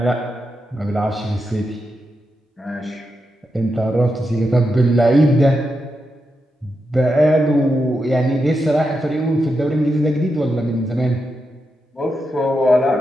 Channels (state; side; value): normal; both; correlation 0.86